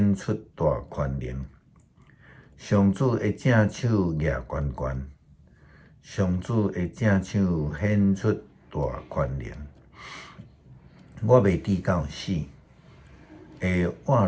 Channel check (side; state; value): both; identical; correlation 1.00